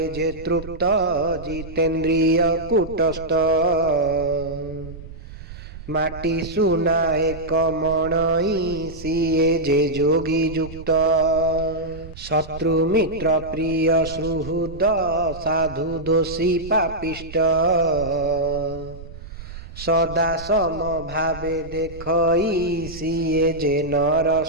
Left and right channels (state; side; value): noise; right; rumble, 14 dB below the sound